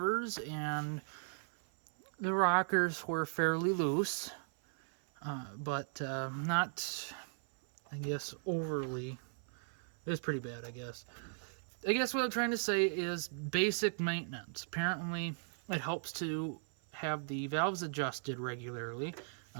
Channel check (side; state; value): left; silent; 53 dB below the other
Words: and the rockers were fairly loose, but not, I guess, overly. It was pretty bad, I guess. I guess what I'm trying to say is basic maintenance. Apparently, it helps to have the valves adjusted regularly.